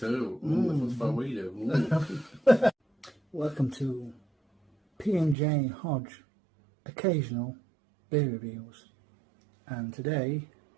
That's what we do. Welcome to P&J Hodge Occasional Beer Reviews. And today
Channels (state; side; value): drops out; left; at 5.4 s